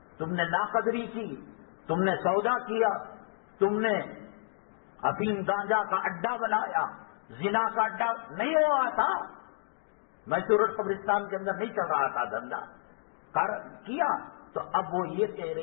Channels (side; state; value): right; silent; digital silence